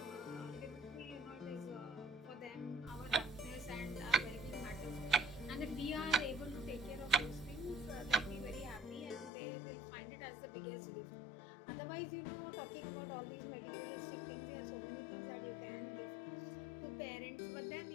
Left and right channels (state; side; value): drops out; right; at 9.3 s